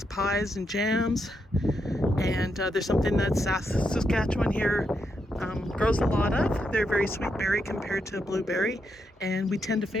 pies, and jams. And there's something that Saskatchewan here grows a lot of. They're very sweet berry compared to blueberry, and we tend to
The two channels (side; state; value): both; normal; correlation 0.81